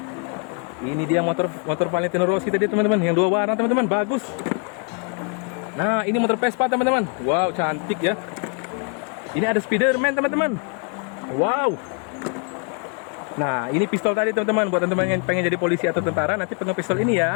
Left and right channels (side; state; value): right; quieter; 37.8 dB